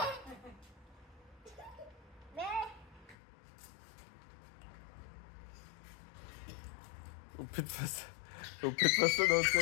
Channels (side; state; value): right; drops out; at 3.2 s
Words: Опитва се да